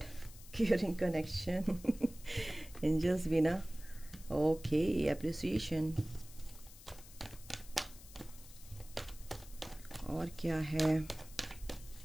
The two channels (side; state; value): left; noise; hiss, 18 dB below the sound